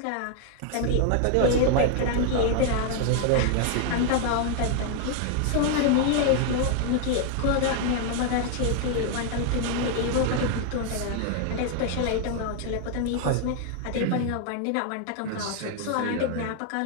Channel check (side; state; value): both; different; correlation 0.00